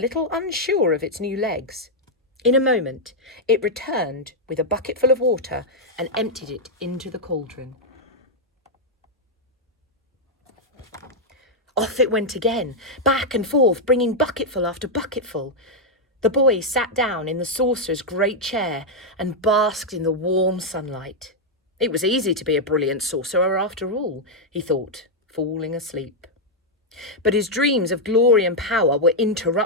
unsure of its new legs. In a moment, it returned with a bucket full of water and emptied it into the cauldron. Off it went again, back and forth, bringing bucketful after bucketful. The boy sat down in the sorcerer's great chair and basked in the warm sunlight. It was easy to be a brilliant sorcerer after all, he thought, falling asleep. But his dreams of glory and power were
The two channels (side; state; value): both; normal; correlation -0.02